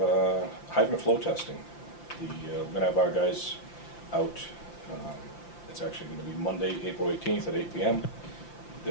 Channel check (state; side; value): late; right; 5.8 ms